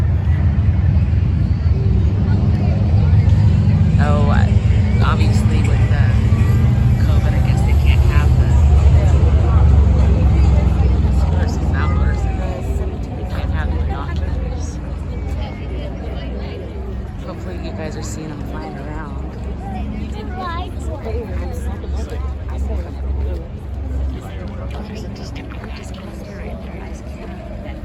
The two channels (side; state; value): both; identical; correlation 1.00